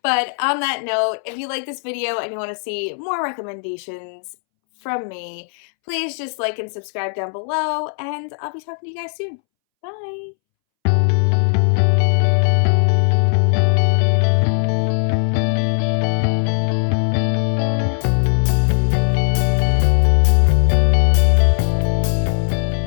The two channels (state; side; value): silent; right; 66 dB below the other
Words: But on that note, if you like this video and you want to see more recommendations from me, please just like and subscribe down below, and I'll be talking to you guys soon. Bye!